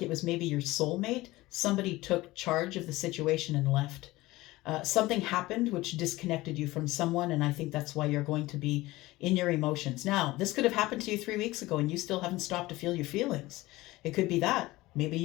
it was maybe your soulmate. Somebody took charge of the situation and left. Something happened which disconnected you from someone, and I think that's why you're going to be in your emotions. Now, this could have happened to you 3 weeks ago and you still haven't stopped to feel your feelings. It could be that. Maybe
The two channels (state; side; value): quieter; right; 19.1 dB